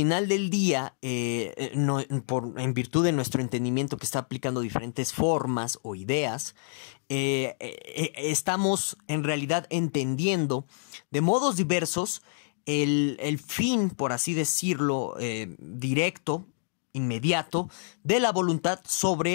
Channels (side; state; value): right; silent; digital silence